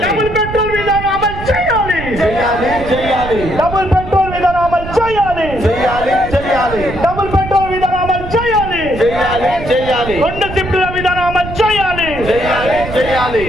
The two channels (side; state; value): right; noise; rumble, 10 dB below the sound